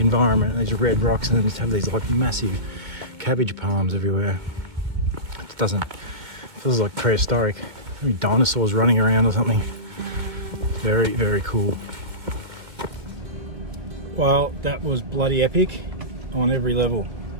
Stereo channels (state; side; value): late; left; 2.0 ms